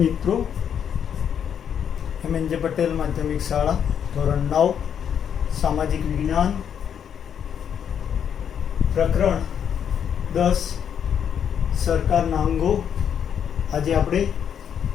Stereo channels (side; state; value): right; quieter; 8.4 dB